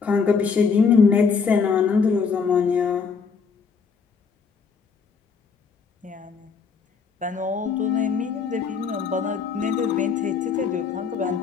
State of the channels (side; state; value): right; quieter; 5.5 dB